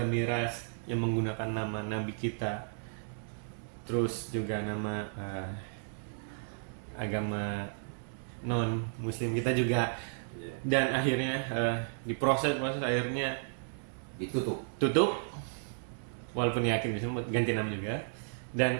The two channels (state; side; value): silent; left; digital silence